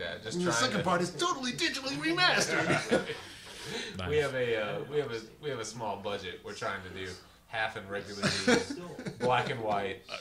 Just And the second part is totally digitally remastered. Nice. We have a small budget. We're trying to do half in regular D, black and white.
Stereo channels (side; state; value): both; identical; correlation 1.00